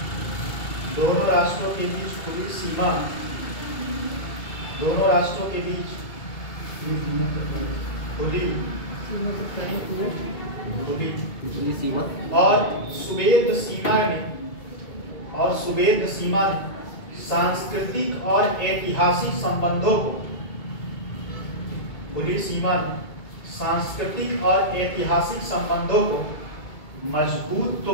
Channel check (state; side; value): late; right; 2.2 ms